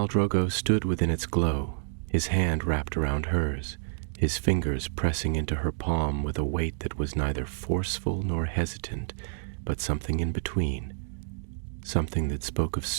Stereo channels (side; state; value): left; silent; digital silence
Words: Drogo stood within its glow, his hand wrapped around hers, his fingers pressing into her palm with a weight that was neither forceful nor hesitant, but something in between, something that spoke of